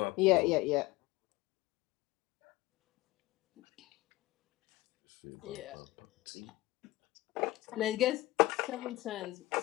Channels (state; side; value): quieter; right; 18.6 dB